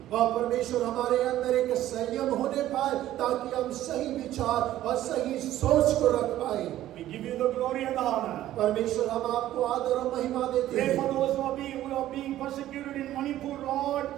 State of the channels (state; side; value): quieter; left; 13.6 dB